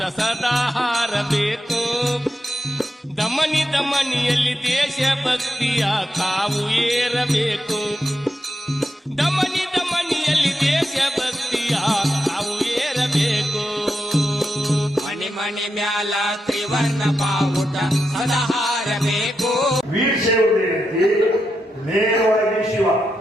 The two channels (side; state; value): both; normal; correlation 0.86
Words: ಸದಾ ಹಾರಬೇಕು. ದಮನಿ ದಮನಿಯಲ್ಲಿ ದೇಶ ಭಕ್ತಿಯ ಕಾವು ಏರಬೇಕು. ದಮನಿ ದಮನಿಯಲ್ಲಿ ದೇಶ ಭಕ್ತಿಯ ಕಾವು ಏರಬೇಕು. ಮನಿ ಮನಿ ಮ್ಯಾಲ ತ್ರಿವರ್ಣ ಬಾವುಟ ಸದಾ ಹಾರಬೇಕು. ವೀರಶೈವ ಏನೈತಿ ನೇರವಾಗಿ ಶಿವ,